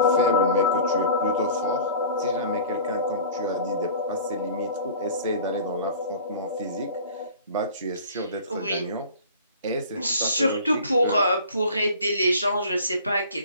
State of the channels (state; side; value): inverted; both; correlation -0.43